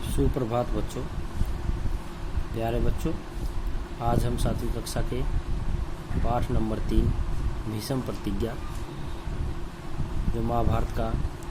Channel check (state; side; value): identical; both; correlation 1.00